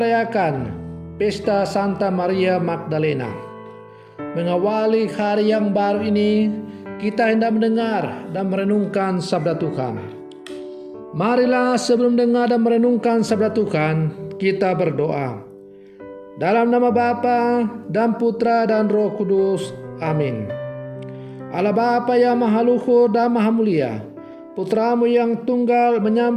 Pesta Santa Maria Magdalena. Mengawali hari yang baru ini, kita hendak mendengar dan merenungkan sabda Tuhan. Marilah sebelum dengar dan merenungkan sabda Tuhan, kita berdoa. Dalam nama Bapa dan Putra dan Roh Kudus. Amin. Allah Bapa yang Maha Luhur dan Maha Mulia, Putramu yang tunggal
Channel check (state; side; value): identical; both; correlation 1.00